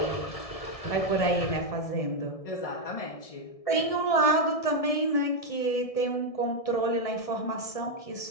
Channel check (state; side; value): late; right; 1.6 ms